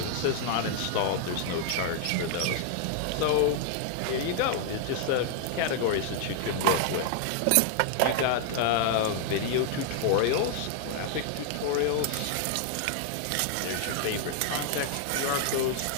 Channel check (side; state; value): both; different; correlation 0.00